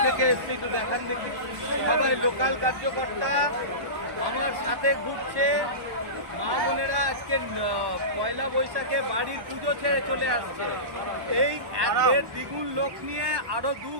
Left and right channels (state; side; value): late; left; 1.1 ms